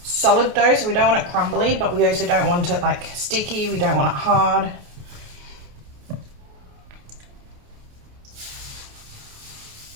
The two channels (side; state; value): left; late; 28 ms